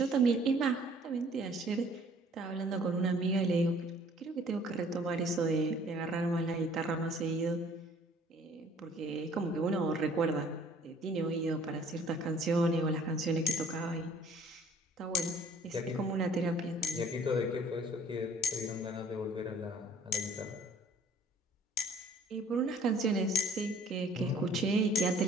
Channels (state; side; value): normal; both; correlation 0.55